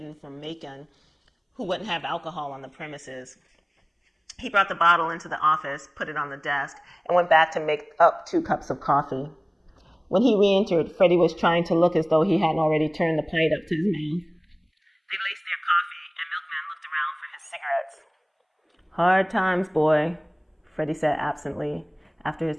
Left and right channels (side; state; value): both; identical; correlation 1.00